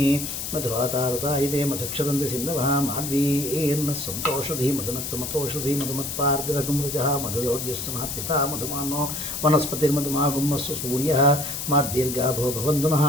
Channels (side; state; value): left; noise; hiss, 5 dB below the sound